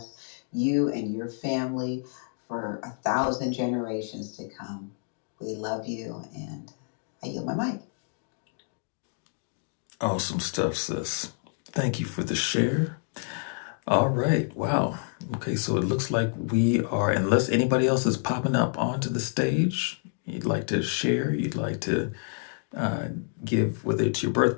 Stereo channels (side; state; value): right; silent; 59 dB below the other